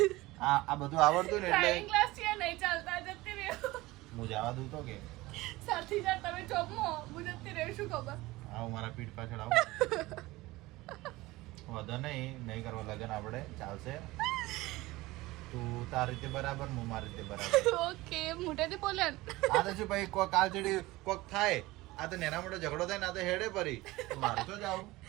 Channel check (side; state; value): left; quieter; 19.6 dB